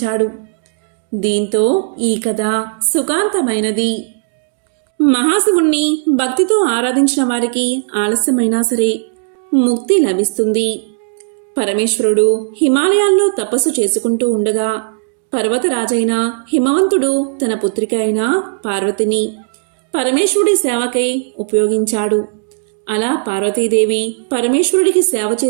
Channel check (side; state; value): left; silent; digital silence